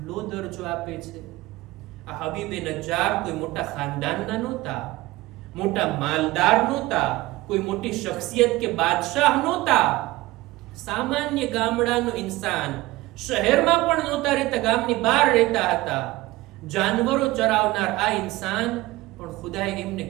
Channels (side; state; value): left; quieter; 19.0 dB